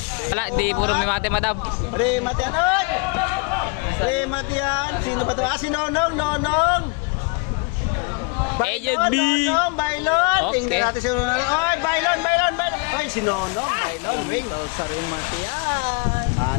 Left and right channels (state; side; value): quieter; right; 31.0 dB